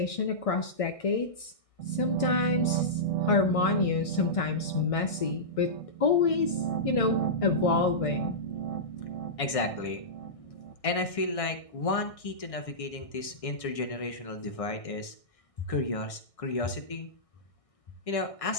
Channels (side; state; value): right; late; 1.6 ms